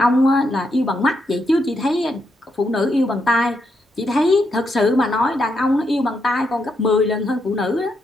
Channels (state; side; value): normal; both; correlation 0.80